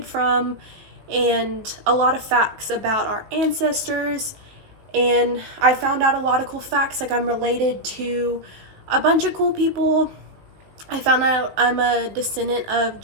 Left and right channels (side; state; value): left; late; 19 ms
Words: from, and a lot of facts about our ancestors. And I found out a lot of cool facts, like I'm related to a bunch of cool people. I found out I'm a descendant of